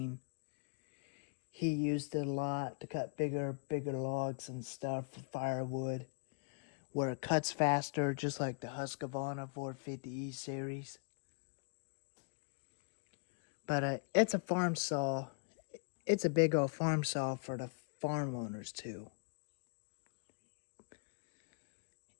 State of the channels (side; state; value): right; quieter; 38.2 dB